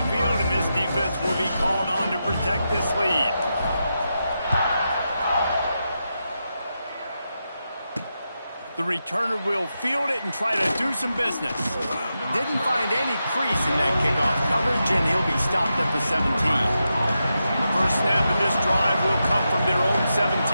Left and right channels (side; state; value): both; inverted; correlation -0.88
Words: field, and this defense will be called on to protect this lead. The returner will field it and try to do some business. Didn't find any crease in that kickoff coverage, and he'll be stopped at the 17. The first snap of this drive will come from their own